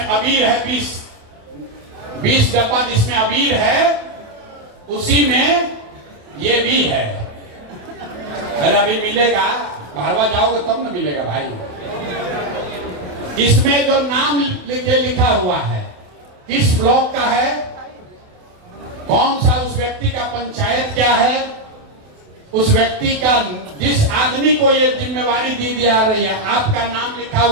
अबीर है, 20 डब्बा जिसमें अबीर है, उसी में ये भी है। अरे अभी मिलेगा, भारवा जाओगे तब ना मिलेगा भाई। इसमें जो नाम लिखा हुआ है, किस ब्लॉक का है, कौन सा उस व्यक्ति का पंचायत क्या है, उस व्यक्ति का, जिस आदमी को ये जिम्मेवारी दी जा रही है, आपका नाम लिखा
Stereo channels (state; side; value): late; left; 28 ms